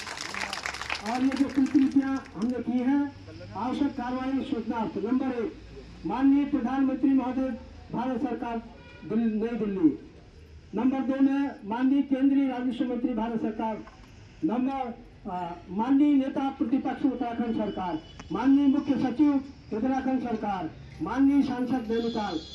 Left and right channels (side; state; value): both; identical; correlation 1.00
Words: और ये जो कृतियां हमने की है, आवश्यक कार्रवाई सूचनार्थ। नंबर 1, माननीय प्रधानमंत्री महोदय भारत सरकार नई दिल्ली। नंबर 2 में माननीय केंद्रीय राजस्व मंत्री भारत सरकार। नंबर माननीय नेता प्रतिपक्ष उत्तराखंड सरकार, माननीय मुख्य सचिव उत्तराखंड सरकार, माननीय सांसद नैनीताल,